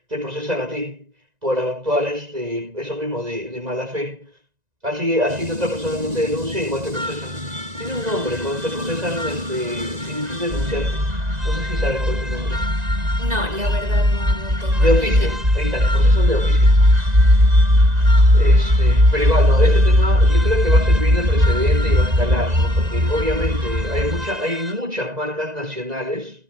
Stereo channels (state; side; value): late; left; 1.9 ms